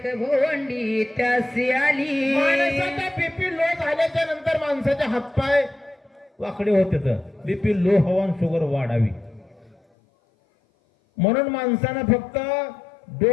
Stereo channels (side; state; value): right; drops out; at 9.8 s